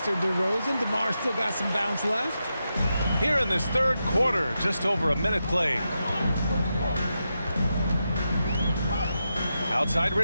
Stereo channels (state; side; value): inverted; both; correlation -0.87